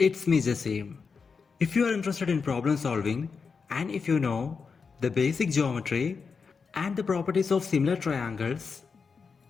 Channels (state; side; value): quieter; right; 5.3 dB